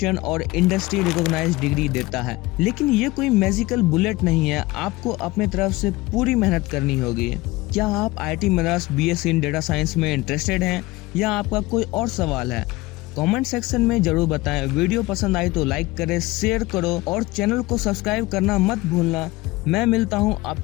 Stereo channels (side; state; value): right; quieter; 20.1 dB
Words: और इंडस्ट्री रिकॉग्नाइज्ड डिग्री देता है। लेकिन ये कोई मैजिकल बुलेट नहीं है, आपको अपने तरफ से पूरी मेहनत करनी होगी। क्या आप IIT Madras BSc in data science में इंटरेस्टेड हैं या आपका कोई और सवाल है? कमेंट सेक्शन में जरूर बताएं। वीडियो पसंद आई तो लाइक करें, शेयर करो और चैनल को सब्सक्राइब करना मत भूलना। मैं मिलता हूं